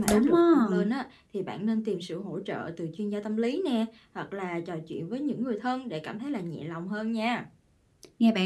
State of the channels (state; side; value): identical; both; correlation 1.00